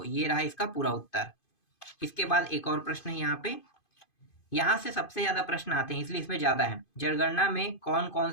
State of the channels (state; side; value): late; right; 2.5 ms